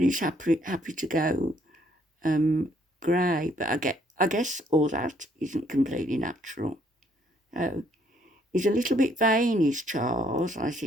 he's happy to go grey. But I guess all that isn't completely natural. He's a little bit vain, is Charles, I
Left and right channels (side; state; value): both; normal; correlation 0.67